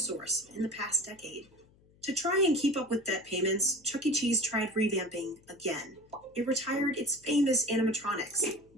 in the past decade. To try and keep up with debt payments, Chuck E. Cheese tried revamping again. It retired its famous animatronics,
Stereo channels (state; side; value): noise; left; hum, 30 dB below the sound